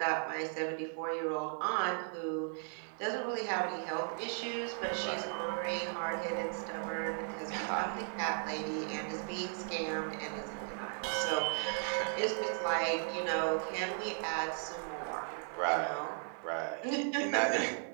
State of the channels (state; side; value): silent; left; 54 dB below the other